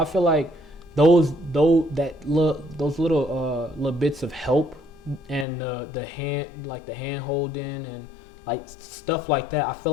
feel like those little bits of help and the hand holding and like stuff like that, I feel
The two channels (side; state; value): right; drops out; at 5.5 s